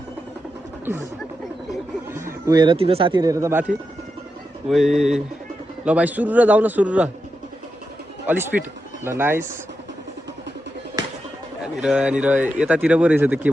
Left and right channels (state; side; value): normal; both; correlation 0.87